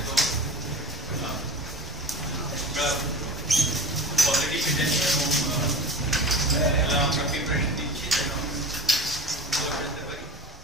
তো আমরা অলরেডি ফিট আছি এবং আমরা প্রিপারেশন দিচ্ছি যেন ভালো খেলতে পারি।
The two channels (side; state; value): both; normal; correlation 0.34